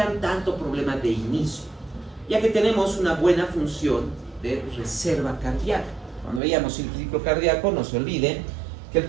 tanto problema de inicio, ya que tenemos una buena función de reserva cardíaca. Cuando veíamos el ciclo cardíaco, no se olviden que el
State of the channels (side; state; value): left; drops out; at 6.4 s